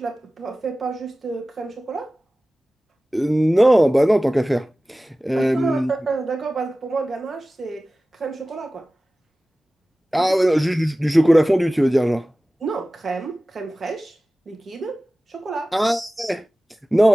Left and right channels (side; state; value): both; normal; correlation 0.97